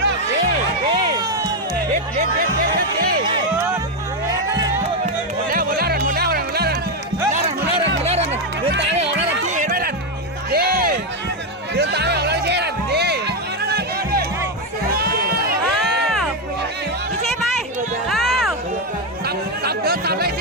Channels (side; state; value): both; normal; correlation 0.06